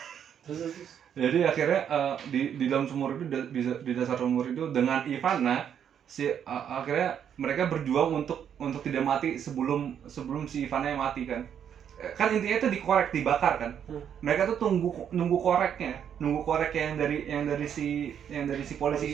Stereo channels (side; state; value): left; quieter; 8.7 dB